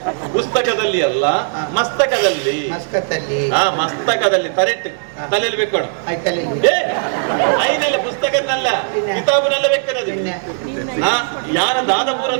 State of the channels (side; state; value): left; silent; digital silence